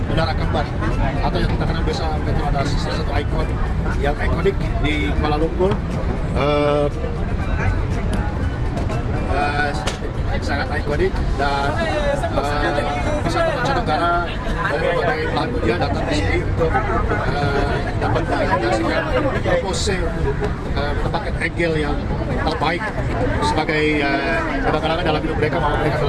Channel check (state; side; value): identical; both; correlation 1.00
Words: Menara Kembar, atau yang kita kenal biasa Petronas, salah satu ikon yang ikonik di Kuala Lumpur. Sangat ikonik dan wisata mancanegara dari berbagai belahan dunia datang di sini untuk dapat menyaksikan pose menempatkan angle yang terbaik sebagai kenangan dalam hidup mereka bahwa mereka